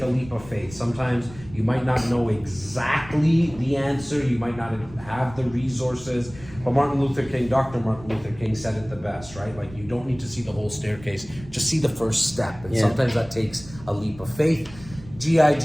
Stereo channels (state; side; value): noise; right; rumble, 18 dB below the sound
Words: a leap of faith. Sometimes you might not know exactly the answer, you might not have the resources, but Dr. Martin Luther King said it the best, right? Like, you don't need to see the whole staircase, just see the first step. And sometimes that takes a leap of faith.